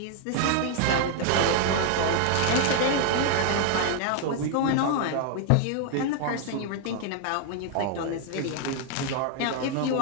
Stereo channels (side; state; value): both; different; correlation 0.00